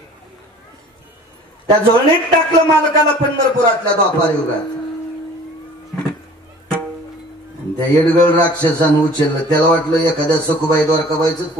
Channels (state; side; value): normal; both; correlation 0.48